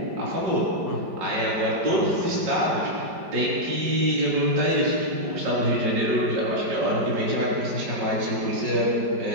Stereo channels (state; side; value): late; left; 5.0 ms